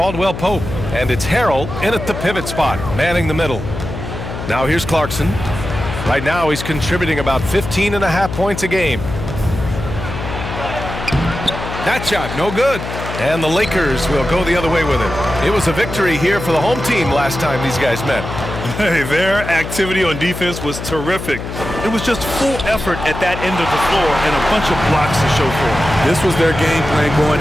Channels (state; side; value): noise; left; hum, 8 dB below the sound